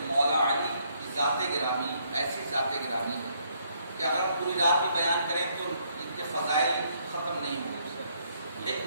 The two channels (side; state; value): both; inverted; correlation -0.70